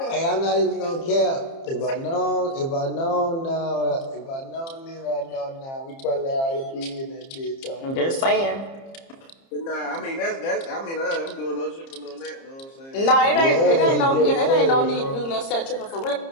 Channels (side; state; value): right; late; 30 ms